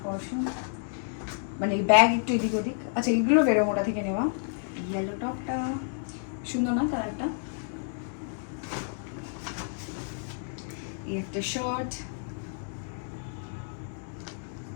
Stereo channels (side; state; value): right; silent; digital silence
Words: পারফিউম, মানে ব্যাগ একটু এদিক ওদিক। আচ্ছা এইগুলো ভেরোমোডা থেকে নেওয়া। ইয়েলো টপটা সুন্দর না কালারটা। এই একটা শার্ট,